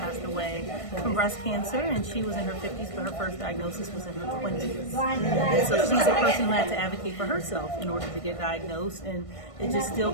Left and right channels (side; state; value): right; late; 1.5 ms